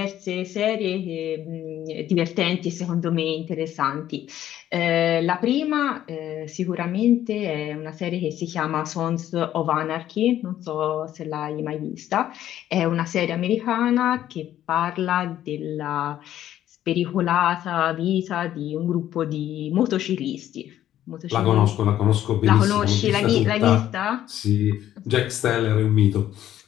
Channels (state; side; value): quieter; right; 12.0 dB